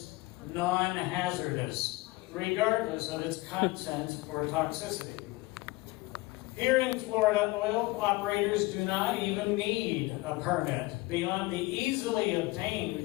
non-hazardous, regardless of its content or toxicity. Here in Florida, oil operators do not even need a permit beyond the easily obtained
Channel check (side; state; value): right; quieter; 21.8 dB